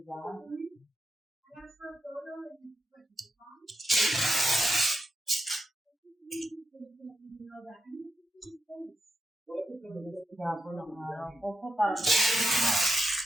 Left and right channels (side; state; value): both; normal; correlation 0.86